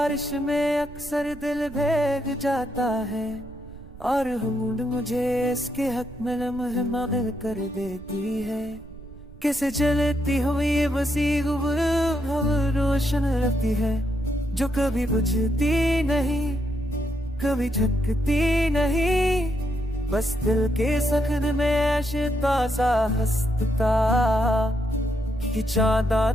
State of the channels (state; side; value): noise; right; rumble, 17 dB below the sound